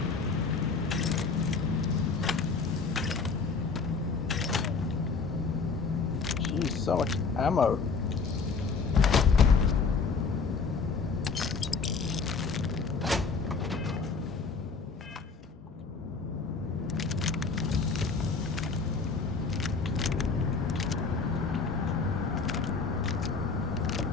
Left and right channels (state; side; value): quieter; right; 4.8 dB